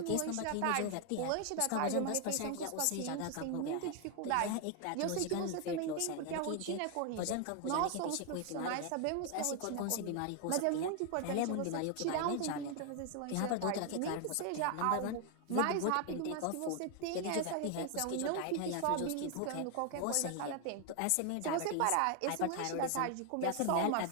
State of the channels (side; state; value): both; different; correlation 0.01